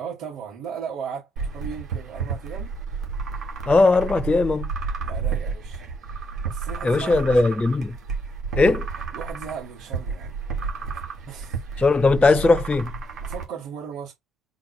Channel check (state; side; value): normal; both; correlation 0.81